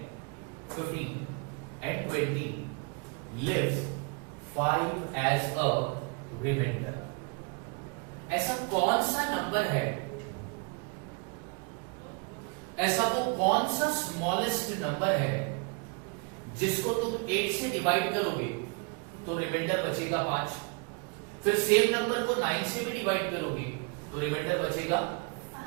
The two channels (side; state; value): left; quieter; 33.5 dB